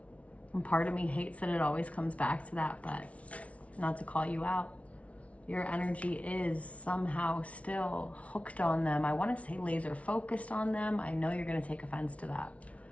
And part of me hates that it always comes back to that, but not to call you out. Your energy is somehow still hooked on them. I want to say laser focused on them. I know you're going to take offense to that.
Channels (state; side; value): late; right; 0.064 ms